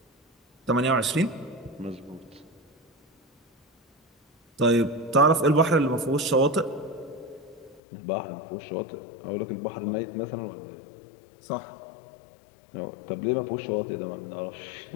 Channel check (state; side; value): drops out; right; at 7.8 s